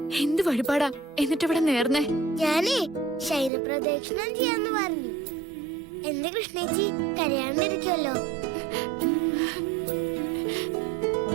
എന്ത് വഴിപാടാ എന്നിട്ട് ഇവിടെ നേർന്നേ? ഞാനേ ശൈലപ്രദക്ഷിണം ചെയ്യാന്ന് പറഞ്ഞു. എന്റെ കൃഷ്ണേച്ചി കരയാണ്ടിരിക്കുമല്ലോ.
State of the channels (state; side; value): drops out; left; at 3.5 s